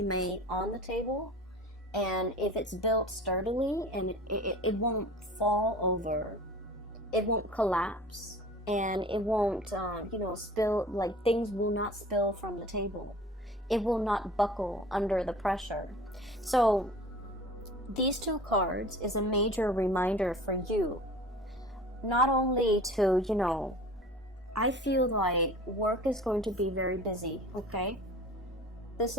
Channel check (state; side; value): normal; both; correlation 0.42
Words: may on the table. And if it's built sturdily, and it won't fall over, it won't collapse, and it won't, you know, spill, like things will not spill from the table. It will not buckle under the pressure. So these 2 cards is a major reminder for you, not only to, you know, I feel like work is going to be very busy, okay?